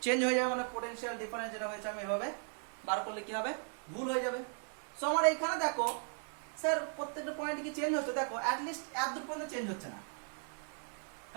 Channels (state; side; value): silent; left; 53 dB below the other